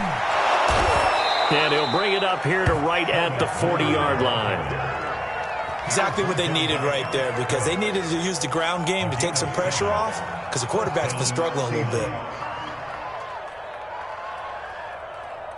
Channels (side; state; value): both; identical; correlation 1.00